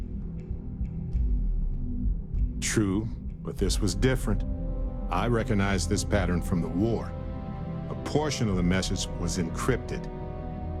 True, but this was different. I recognized this pattern from the war. A portion of the message was encrypted.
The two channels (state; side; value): identical; both; correlation 1.00